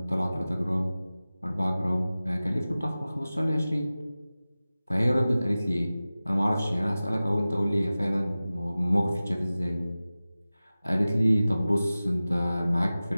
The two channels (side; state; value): both; inverted; correlation -0.97